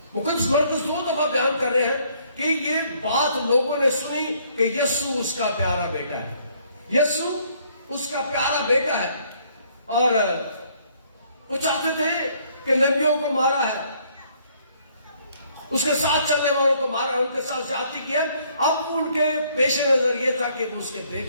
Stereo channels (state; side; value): inverted; both; correlation -0.65